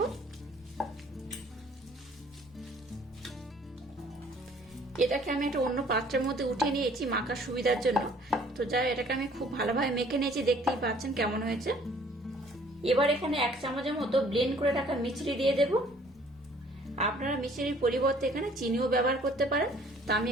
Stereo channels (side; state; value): both; normal; correlation 0.57